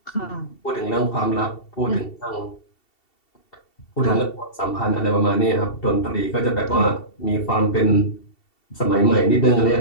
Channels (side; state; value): right; late; 2.7 ms